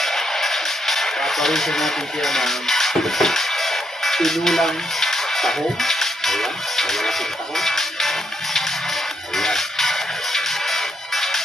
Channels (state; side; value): normal; both; correlation 0.76